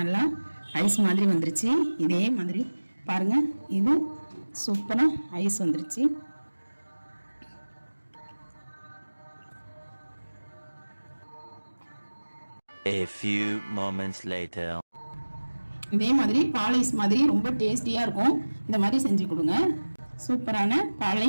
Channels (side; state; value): both; inverted; correlation -1.00